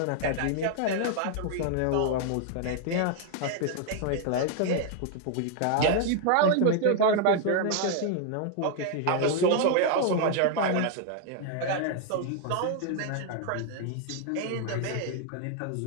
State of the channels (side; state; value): both; different; correlation 0.00